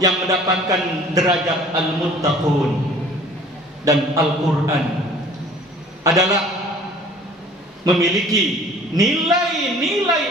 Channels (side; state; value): both; normal; correlation 0.50